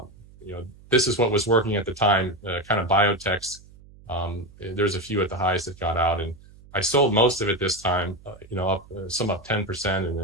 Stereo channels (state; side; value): noise; right; hum, 23 dB below the sound